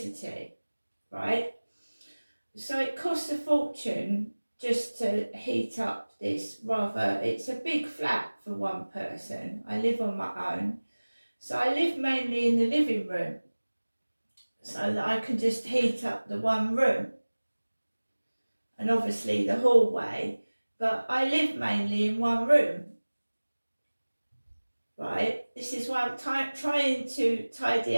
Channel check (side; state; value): both; inverted; correlation -1.00